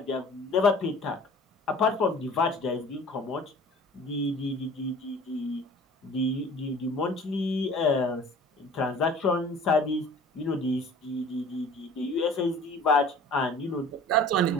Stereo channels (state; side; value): normal; both; correlation 0.46